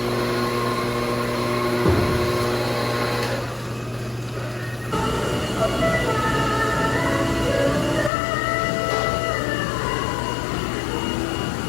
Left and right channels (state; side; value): drops out; right; at 8.1 s